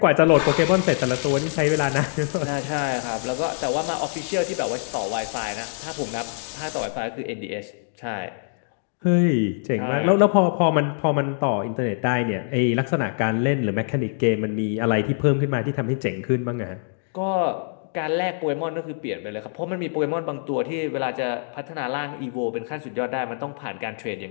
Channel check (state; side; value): silent; right; digital silence